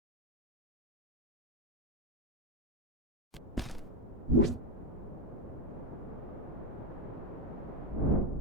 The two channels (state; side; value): normal; both; correlation 0.07